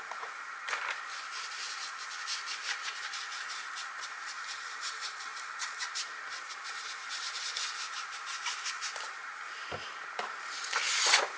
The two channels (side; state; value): both; identical; correlation 1.00